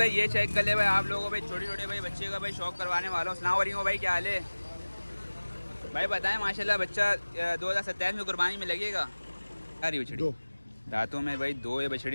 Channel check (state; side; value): inverted; both; correlation -1.00